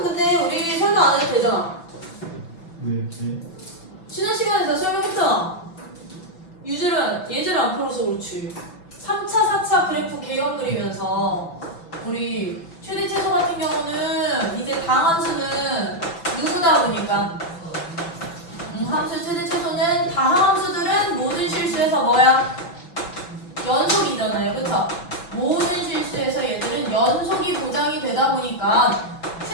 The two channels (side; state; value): right; late; 5.9 ms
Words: 근데 우리 설명 안 해도 되잖아. 네. 지난 시간에 다 설명했잖아. 예제를 안 풀어서 그렇지. 3차, 4차 그래프 개형 그리면서 우리 최대 최소 같은 경우는 이제 다함수는 누구다 보니까 함수의 최대 최소는 다함수들은 모든 실수에서 뭐야? 연속이잖아요. 그쵸? 모든 실수에서 얘들은 연속이 보장이 되다 보니까